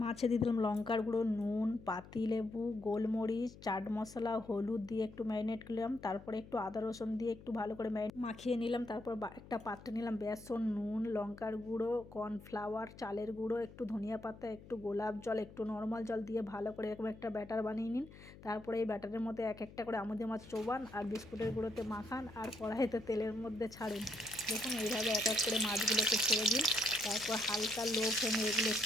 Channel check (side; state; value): left; noise; hum, 18 dB below the sound